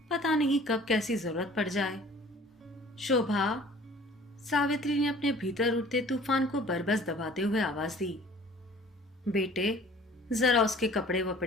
पता नहीं कब कैसी जरूरत पड़ जाए। शोभा, सावित्री ने अपने भीतर उठते तूफान को बरबस दबाते हुए आवाज दी। बेटे, जरा उसके कपड़े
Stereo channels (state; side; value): normal; both; correlation 0.50